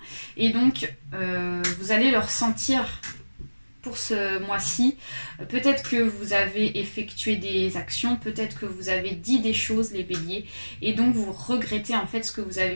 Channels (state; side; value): inverted; both; correlation -1.00